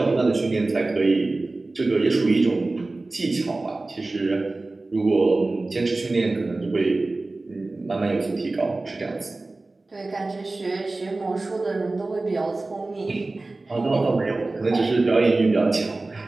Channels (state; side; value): quieter; left; 3.2 dB